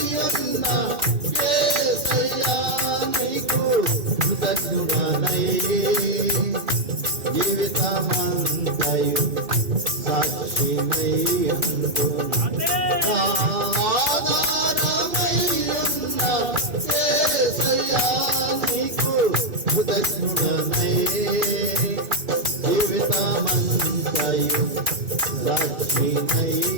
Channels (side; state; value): left; late; 2.7 ms